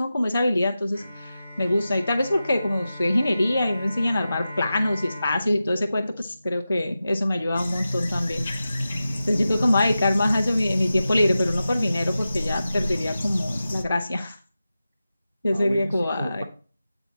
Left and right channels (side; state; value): both; inverted; correlation -0.93